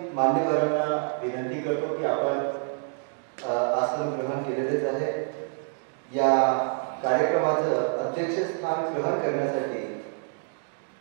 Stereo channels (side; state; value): left; silent; 60 dB below the other